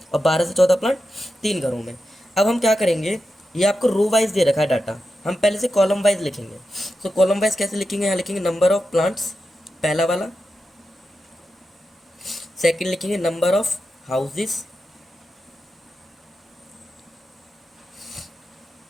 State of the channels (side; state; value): both; normal; correlation 0.90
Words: और 12 से 14 प्लांट 3 घरों में। अब हम क्या करेंगे, ये आपको रो वाइज दे रखा है डाटा, हम पहले से कॉलम वाइज लिखेंगे। तो कॉलम वाइज कैसे लिखेंगे? यहाँ लिखेंगे नंबर ऑफ प्लांट्स, पहला वाला। सेकंड लिखेंगे नंबर ऑफ हाउसेस।